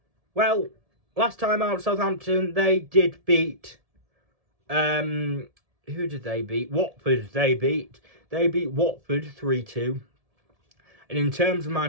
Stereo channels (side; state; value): left; late; 1.7 ms